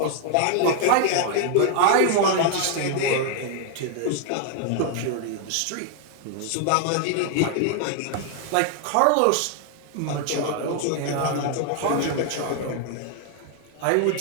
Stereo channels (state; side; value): different; both; correlation 0.00